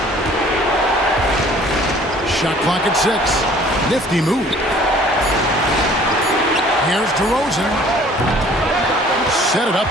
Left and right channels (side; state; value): both; normal; correlation 0.53